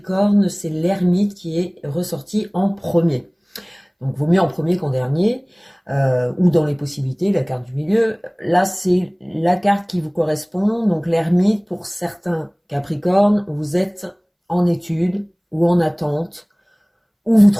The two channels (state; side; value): identical; both; correlation 1.00